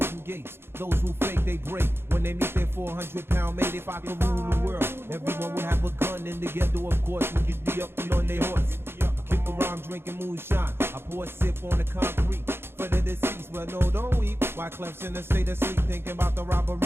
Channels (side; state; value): left; late; 0.11 ms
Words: gates. Those who fake, they break. When they meet their 400-pound mate, if I could rule the world, everyone would have a gun in the ghetto, of course. We could be up and on their horse. Kick around drinking moonshine. I pour a sip on the concrete for the deceased. Well, no, don't weep. Why Clef's in a state of sleep, thinking about the robbery